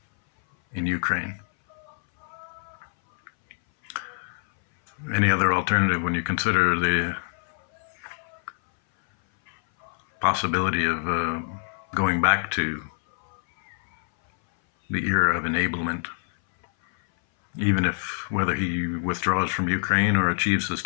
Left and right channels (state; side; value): silent; right; 59 dB below the other